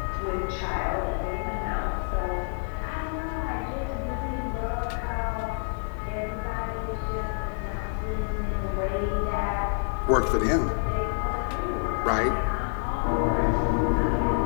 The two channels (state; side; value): silent; right; 57 dB below the other